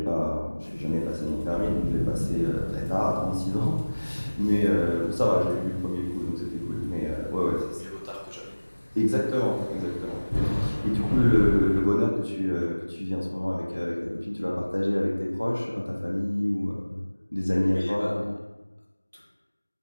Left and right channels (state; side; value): inverted; both; correlation -1.00